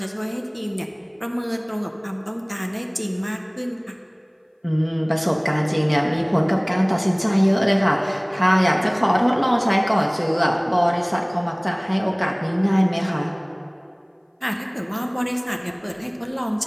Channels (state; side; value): identical; both; correlation 1.00